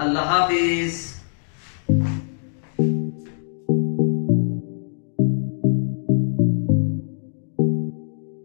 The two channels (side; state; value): right; silent; digital silence